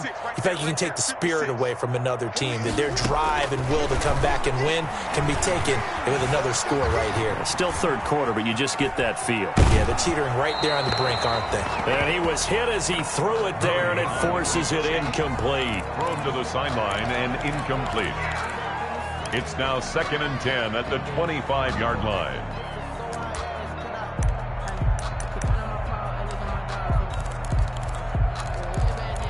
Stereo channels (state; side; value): identical; both; correlation 1.00